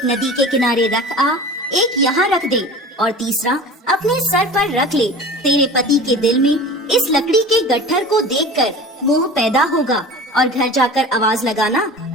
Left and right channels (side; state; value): both; normal; correlation 0.37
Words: नदी के किनारे रख आ, एक यहाँ रख दे और तीसरा अपने सर पर रख ले। तेरे पति के दिल में इस लकड़ी के गट्ठर को देखकर मोह पैदा होगा और घर जाकर आवाज लगाना,